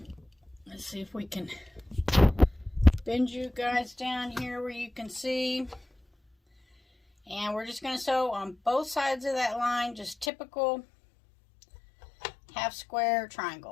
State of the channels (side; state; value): right; drops out; at 10.3 s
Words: Let's see if we can bend you guys down here where you can see. And we're just going to sew on both sides of that line, just typical half square